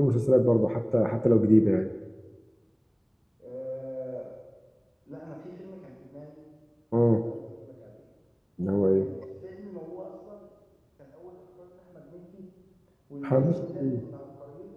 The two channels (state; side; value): identical; both; correlation 1.00